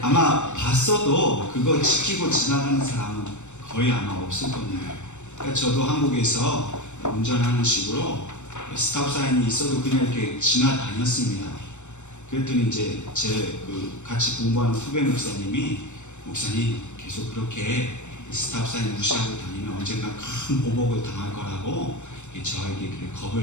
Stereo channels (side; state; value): right; late; 0.84 ms